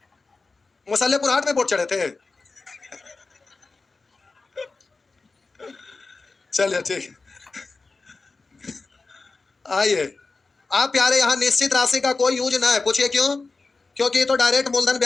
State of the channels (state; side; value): quieter; right; 3.9 dB